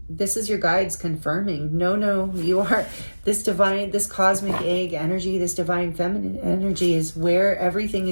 this is your guides confirming, no, you are this divine, this cosmic egg energy, this divine feminine energy is where everything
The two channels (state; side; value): inverted; both; correlation -1.00